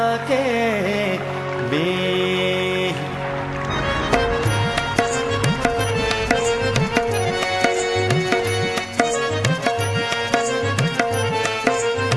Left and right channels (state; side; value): identical; both; correlation 1.00